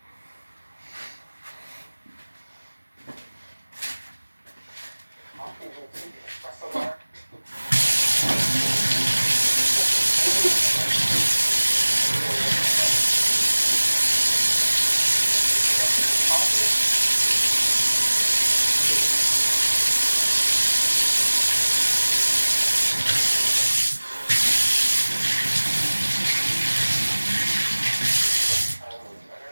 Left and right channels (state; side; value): inverted; both; correlation -1.00